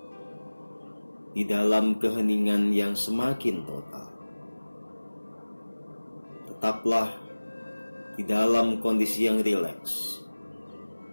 di dalam keheningan yang semakin total. Tetaplah di dalam kondisi yang rileks.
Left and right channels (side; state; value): both; inverted; correlation -1.00